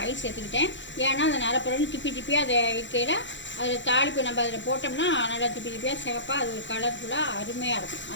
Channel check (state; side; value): late; right; 0.54 ms